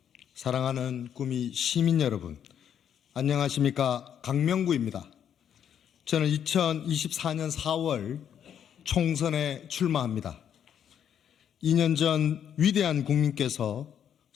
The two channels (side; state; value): right; quieter; 9.0 dB